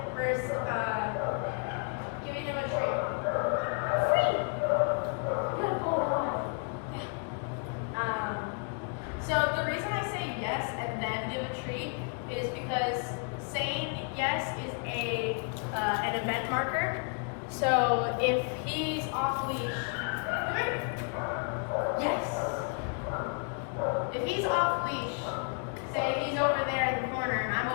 first giving him a treat. Free. Good boy. Yeah. So the reason I say yes and then give a treat is because saying yes is an event marker. So if he's off leash, yes. If he's off leash, say he's over there in the corner and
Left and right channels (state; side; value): quieter; right; 38.9 dB